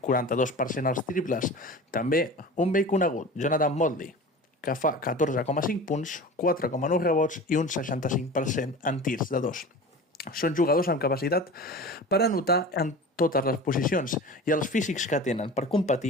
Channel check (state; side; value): normal; both; correlation 0.35